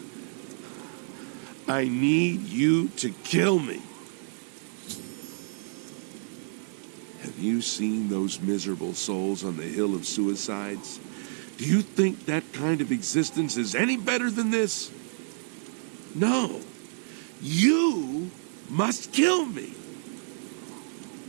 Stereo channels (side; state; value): left; silent; 59 dB below the other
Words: I need you to kill me. Have you seen those miserable souls on the Hill of Suicides? Do you think that kind of existence is any better than this? No. You must kill me.